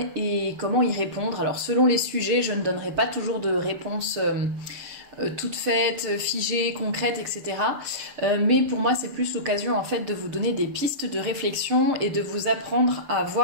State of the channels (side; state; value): left; late; 6.7 ms